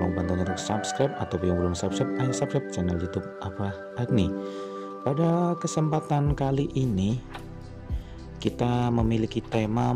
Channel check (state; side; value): identical; both; correlation 1.00